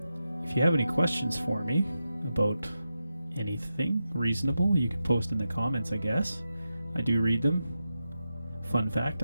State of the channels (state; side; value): inverted; both; correlation -0.89